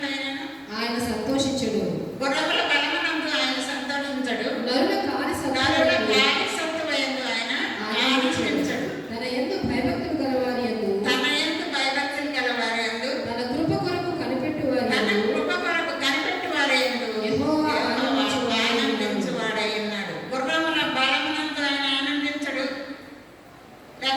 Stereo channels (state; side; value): identical; both; correlation 1.00